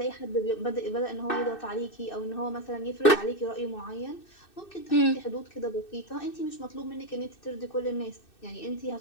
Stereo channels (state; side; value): late; right; 2.6 ms